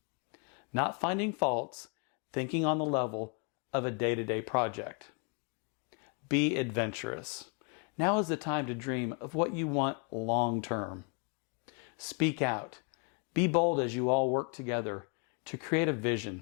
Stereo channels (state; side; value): quieter; right; 36.3 dB